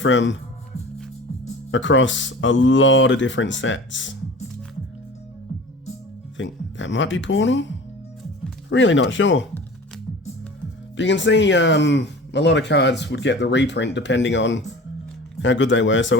across a lot of different sets. I think that might be Portal. Really not sure. But you can see a lot of cards would get the reprint depending on how good they were.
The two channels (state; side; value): normal; both; correlation 0.39